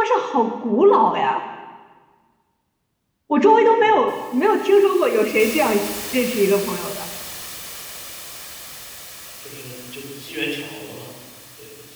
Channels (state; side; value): identical; both; correlation 1.00